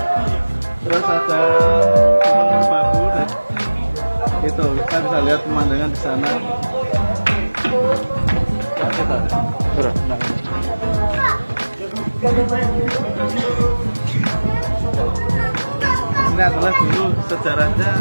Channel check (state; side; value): inverted; both; correlation -1.00